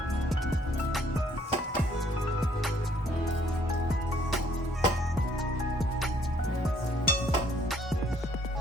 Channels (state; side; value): normal; both; correlation 0.63